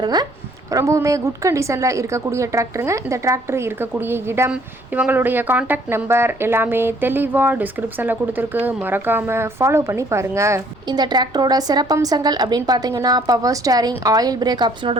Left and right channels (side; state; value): right; noise; rumble, 27 dB below the sound